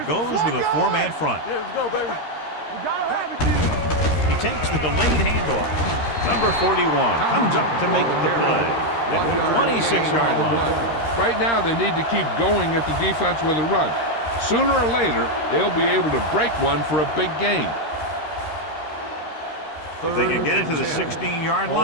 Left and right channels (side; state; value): right; late; 13 ms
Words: goes with a four-man front. Yeah, let's go, baby. You gotta have it, G. He takes the delayed handoff. Number 41 comes up to make the play at the 26-yard line. Right now, they need to keep going at the defense with a run. Sooner or later, they'll be able to break one for a big gain. If they can get it to the 16-yard